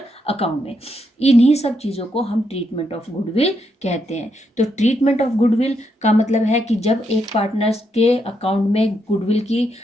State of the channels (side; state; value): both; normal; correlation 0.79